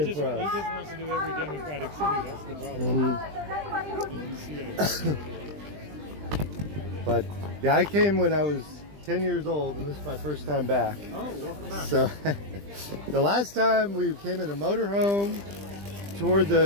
for us. He just wants to do every democratic city. That's the problem. But yeah, I came when I was 10 years old, and this is my first time back. Oh, welcome back. So the last time we came in a motorhome, toured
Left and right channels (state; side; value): late; left; 20 ms